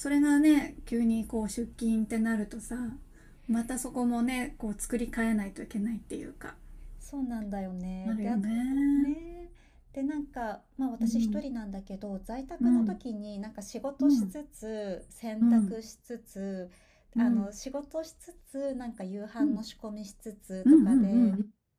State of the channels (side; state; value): both; identical; correlation 1.00